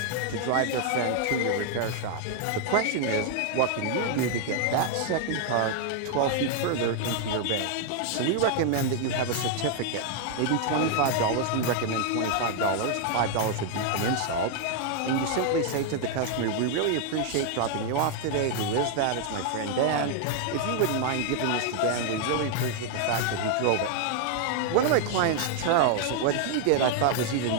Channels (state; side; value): different; both; correlation 0.00